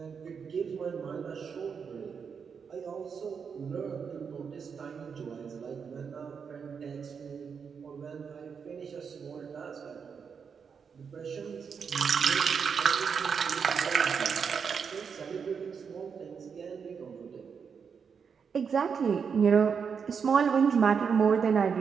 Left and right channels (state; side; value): quieter; left; 6.3 dB